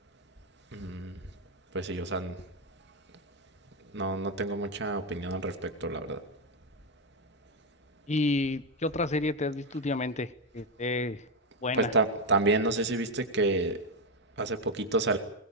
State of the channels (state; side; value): normal; both; correlation 0.07